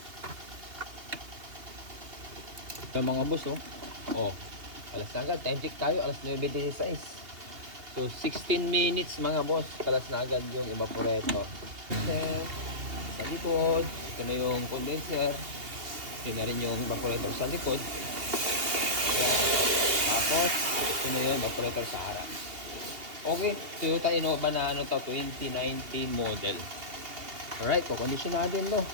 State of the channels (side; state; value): left; late; 2.8 ms